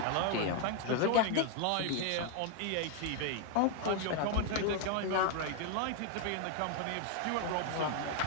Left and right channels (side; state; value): both; different; correlation 0.00